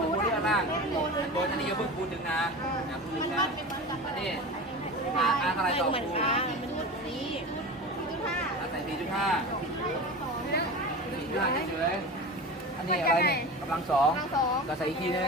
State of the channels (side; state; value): both; normal; correlation 0.30